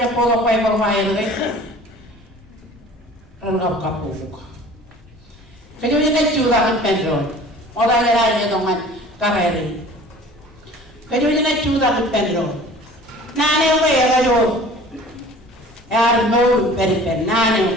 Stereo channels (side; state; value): both; normal; correlation 0.45